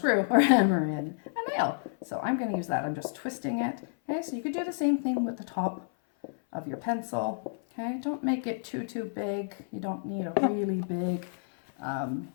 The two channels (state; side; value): silent; right; 58 dB below the other